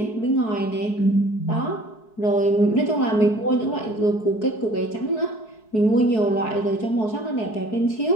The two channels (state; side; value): late; right; 4.6 ms